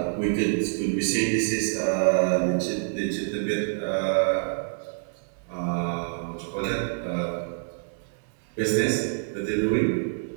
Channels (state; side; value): silent; left; 59 dB below the other